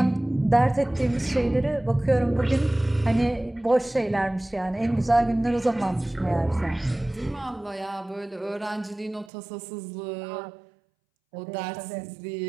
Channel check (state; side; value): drops out; left; at 9.3 s